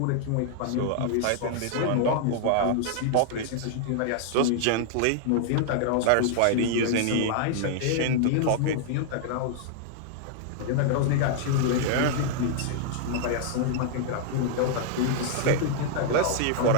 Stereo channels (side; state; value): both; different; correlation -0.01